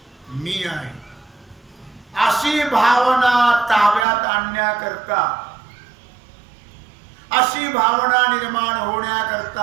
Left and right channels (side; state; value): left; drops out; at 4.0 s